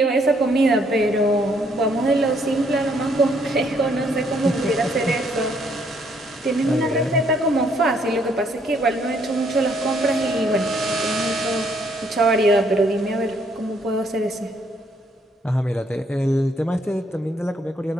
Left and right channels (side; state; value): both; normal; correlation 0.69